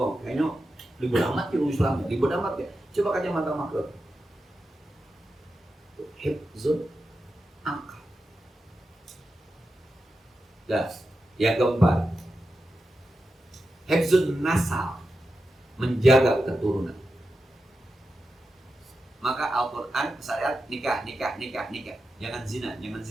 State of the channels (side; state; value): both; normal; correlation 0.90